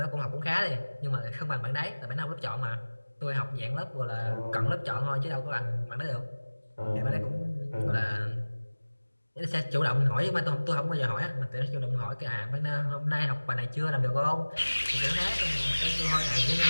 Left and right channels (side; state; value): both; inverted; correlation -1.00